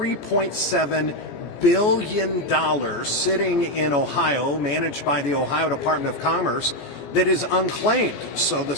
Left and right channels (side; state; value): right; late; 17 ms